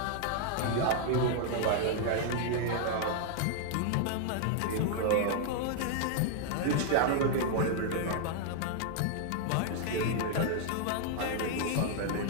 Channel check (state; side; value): different; both; correlation 0.00